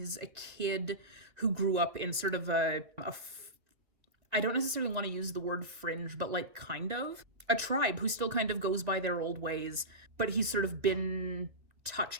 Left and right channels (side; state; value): left; late; 2.2 ms